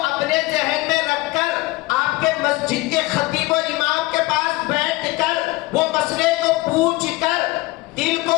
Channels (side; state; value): right; quieter; 20.7 dB